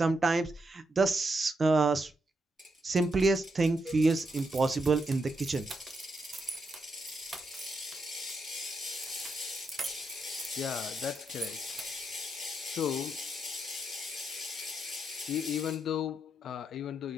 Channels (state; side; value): normal; both; correlation 0.81